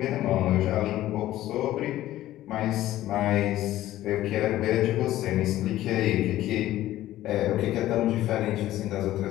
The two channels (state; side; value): quieter; right; 14.4 dB